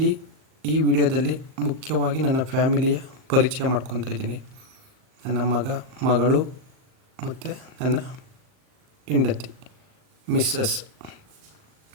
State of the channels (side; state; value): left; late; 38 ms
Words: ಈ ವಿಡಿಯೋದಲ್ಲಿ ಮುಖ್ಯವಾಗಿ ನನ್ನ ಫ್ಯಾಮಿಲಿಯ ಪರಿಚಯ ಮಾಡ್ಕೊತಾ ಇದ್ದೀನಿ. ನನ್ನ ಮಗಳು ಮತ್ತು ನನ್ನ ಹೆಂಡತಿ ಮಿಸ್ಸಸ್